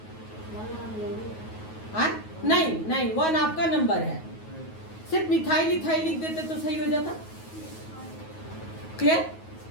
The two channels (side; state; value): right; late; 9.3 ms